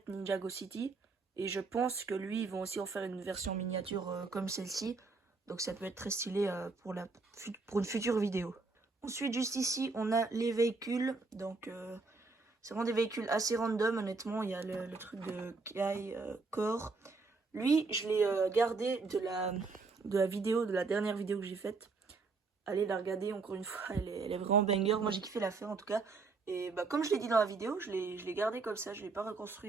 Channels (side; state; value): left; quieter; 4.1 dB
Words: Ninjago City. Et je pense que lui, ils vont aussi en faire une version miniature comme celle-ci. Donc ça peut être très stylé pour une future vidéo. Ensuite, juste ici, on a les véhicules. Donc c'est vraiment des véhicules assez random, honnêtement. Il y a le truc de Kai Core. Lui, je l'ai gardé de la vidéo, de la dernière vidéo que j'ai faite. Allez la regarder encore une fois, elle est vraiment banger. Moi j'ai kiffé la faire en tout cas. Et bah, comme je l'ai dit dans la vidéo, je l'ai gardé comme ça, je ne l'ai pas